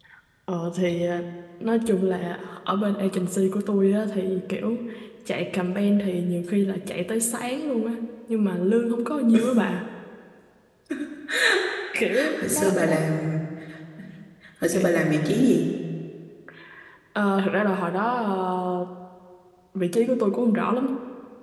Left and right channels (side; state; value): both; identical; correlation 1.00